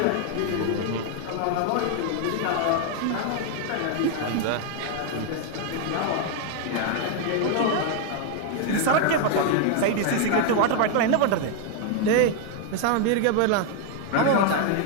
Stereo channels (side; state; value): both; different; correlation 0.00